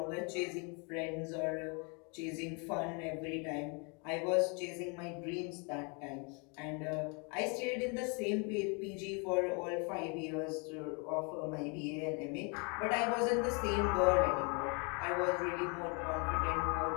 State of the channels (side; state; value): right; quieter; 33.7 dB